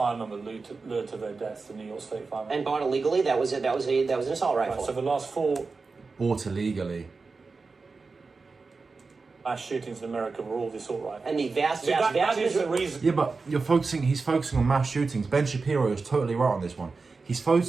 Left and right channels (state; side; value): quieter; left; 4.3 dB